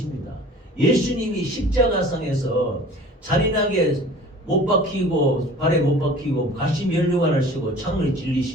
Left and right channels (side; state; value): both; normal; correlation 0.45